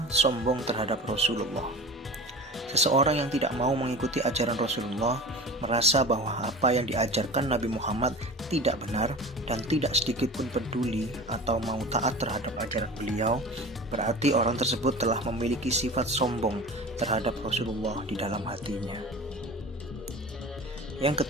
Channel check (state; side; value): normal; both; correlation 0.35